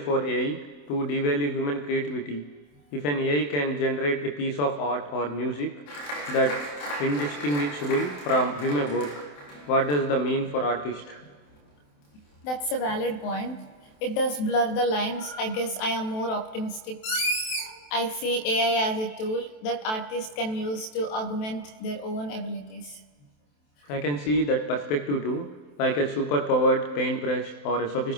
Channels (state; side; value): late; right; 27 ms